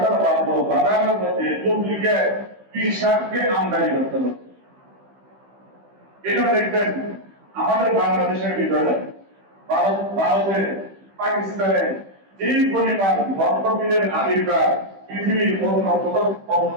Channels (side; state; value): left; late; 15 ms